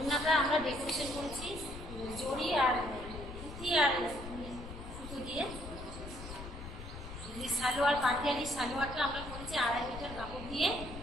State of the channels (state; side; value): noise; left; rumble, 11 dB below the sound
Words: আমরা ডেকোরেশন করেছি জড়ি আর পুঁতি আর সুতো দিয়ে। সালোয়ার পাটিয়ালি সালোয়ারটা আমরা করেছি 2.5 মিটার কাপড় দিয়ে